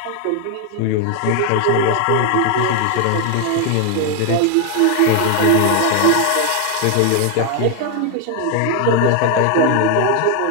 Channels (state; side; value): different; both; correlation 0.01